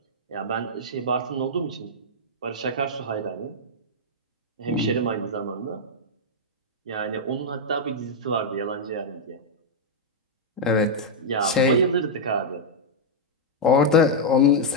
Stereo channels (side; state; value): both; normal; correlation -0.04